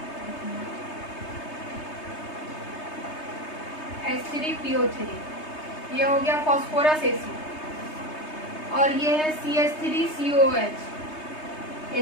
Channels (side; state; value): right; late; 3.2 ms